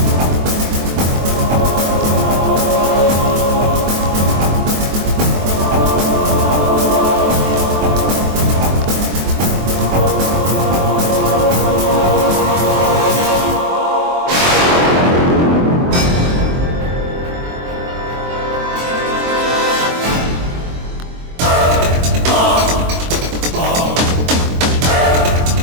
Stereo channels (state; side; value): late; left; 23 ms